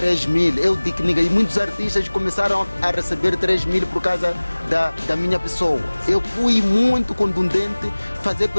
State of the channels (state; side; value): inverted; both; correlation -1.00